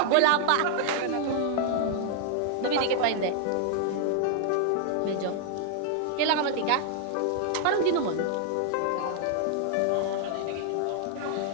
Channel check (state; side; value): different; both; correlation -0.01